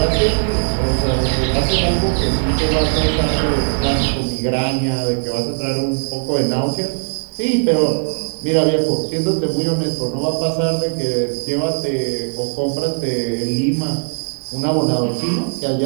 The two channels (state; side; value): silent; left; 67 dB below the other